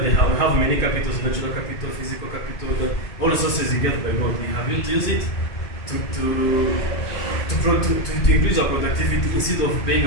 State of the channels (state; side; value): late; right; 2.5 ms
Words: have many capitals, natural capital, physical capital, all resources you get by God. We have used it to increase our productivity instead of being